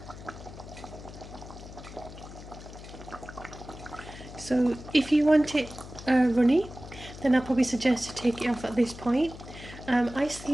So if you want it runny, then I'll probably suggest to take it off at this point. I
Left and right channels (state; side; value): noise; left; hum, 14 dB below the sound